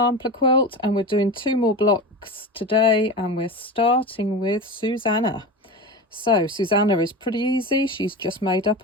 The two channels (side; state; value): both; normal; correlation 0.26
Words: quilt, and we're doing 2 more blocks today, and we're starting with Susannah. So Susannah is pretty easy. She's just made